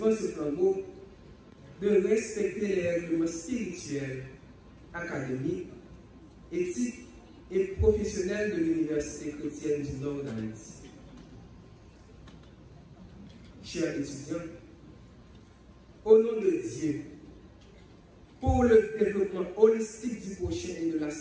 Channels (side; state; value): both; identical; correlation 1.00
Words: ce flambeau, de respecter les règlements spirituels, académiques, éthiques et professionnels de l'Université chrétienne du Nord d'Haïti. Chers étudiants, au nom de Dieu, pour le développement holistique du prochain et de la